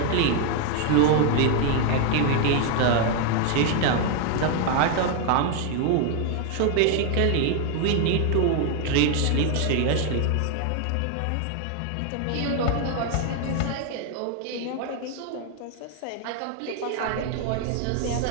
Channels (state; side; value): different; both; correlation 0.01